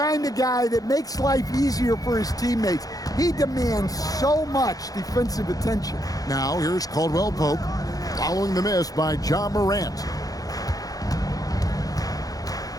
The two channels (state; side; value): late; right; 0.18 ms